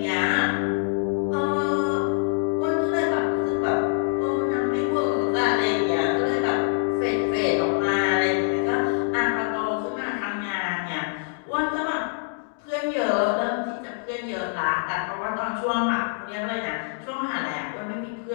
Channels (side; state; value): right; silent; digital silence